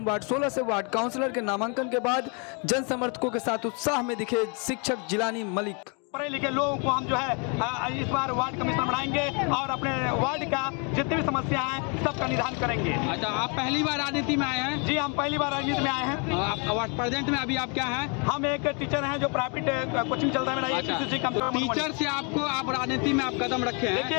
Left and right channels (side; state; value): right; quieter; 35.5 dB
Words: वार्ड 16 से वार्ड काउंसलर के नामांकन के बाद जन समर्थकों के साथ उत्साह में दिखे शिक्षक जिलानी मलिक। पढ़े लिखे लोगों को हम जो है इस बार वार्ड कमिश्नर बनाएंगे और अपने वार्ड का जितनी भी समस्या है सबका निदान करेंगे। अच्छा, आप पहली बार राजनीति में आए हैं? जी, हम पहली बार राजनीति में आए हैं। आप प्रेजेंट में अभी आप क्या हैं? हम एक टीचर हैं जो प्राइवेट कोचिंग चलता है मेरा। अच्छा, टीचर से आप राजनीति में आप कदम रखे हैं।